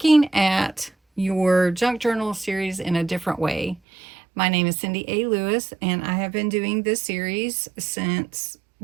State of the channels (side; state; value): left; drops out; at 3.8 s